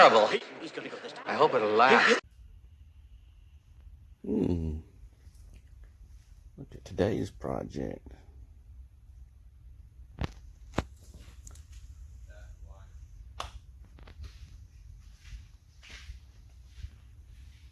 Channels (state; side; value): identical; both; correlation 1.00